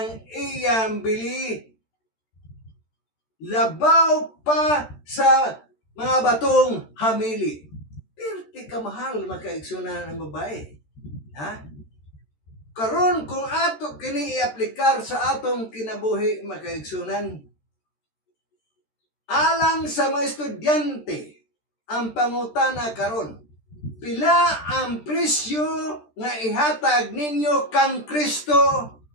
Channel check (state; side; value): late; right; 13 ms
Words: iyang bili labaw pa sa mga batong hamili. Perti ka mahal makaigsunan ang babae. Ha? Karon kung ato kini i-aplikar sa atong kinabuhi makaigsunan, alang sa mga estudyante, ang pangutana karon, pila ang presyo nga ihatag ninyo kang Kristo